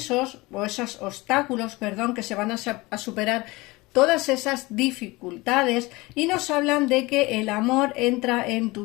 o esos obstáculos, que se van a superar todas esas dificultades y nos hablan de que el amor entra en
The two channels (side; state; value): right; quieter; 22.3 dB